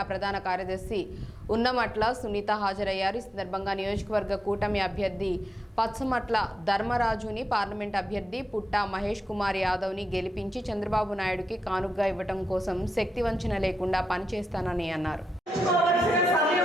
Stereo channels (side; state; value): both; normal; correlation 0.87